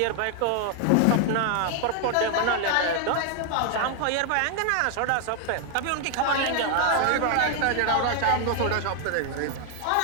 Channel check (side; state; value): both; different; correlation 0.00